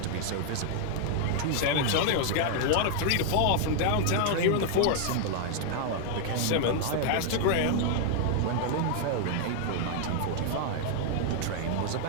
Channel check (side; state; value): both; different; correlation 0.00